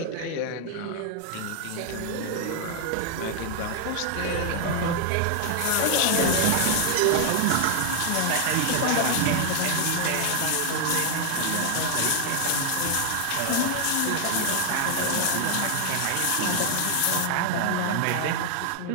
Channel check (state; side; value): different; both; correlation 0.00